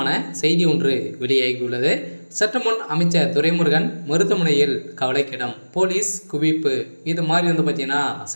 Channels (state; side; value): inverted; both; correlation -1.00